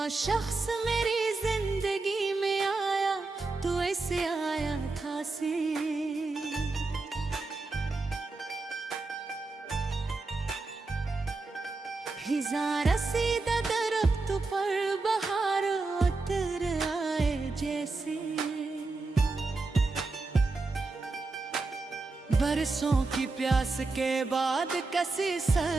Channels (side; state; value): left; quieter; 3.6 dB